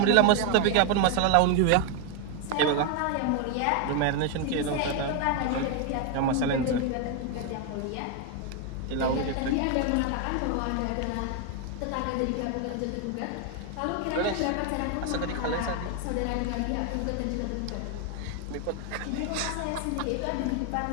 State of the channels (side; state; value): both; different; correlation 0.01